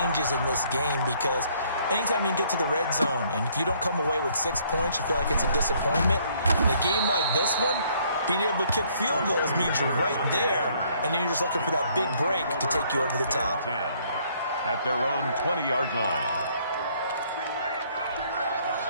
in this game because anytime you can get to the red zone, and if you don't come away with 6 points, you feel like it's a disappointment. In a game like this one, being able to kick field goals means you're right there, and then you're just looking for that big break to take you over the top. At their own 20-yard line.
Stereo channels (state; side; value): inverted; both; correlation -0.64